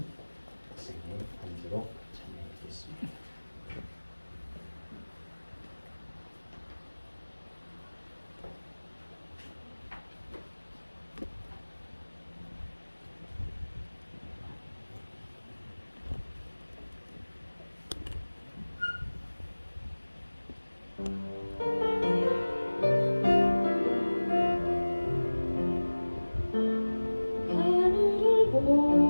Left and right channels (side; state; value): both; inverted; correlation -1.00